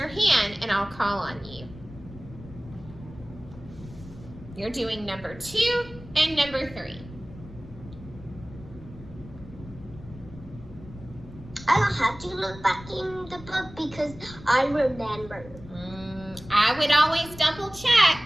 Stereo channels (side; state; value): left; noise; rumble, 17 dB below the sound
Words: hand and I'll call on you. You're doing number 2 and number 3. I don't have to look back in the book because I remember. I would always double check.